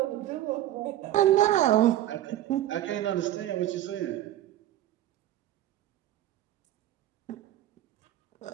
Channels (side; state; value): left; quieter; 13.2 dB